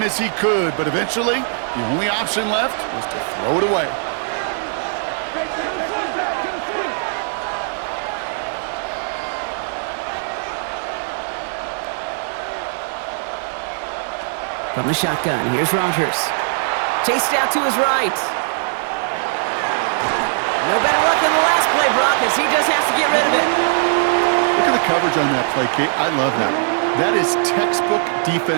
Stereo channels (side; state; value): left; silent; digital silence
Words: as he could, but eventually, the only option left was to throw it away. From the shotgun, here's Rodgers. Chased out to his right. No better luck than the last play, Brock, as he just has to get rid of it. Look at the coverage on that play, Kate. I love that. That is textbook